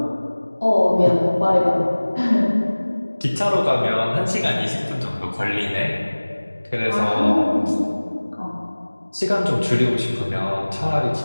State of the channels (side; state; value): both; inverted; correlation -1.00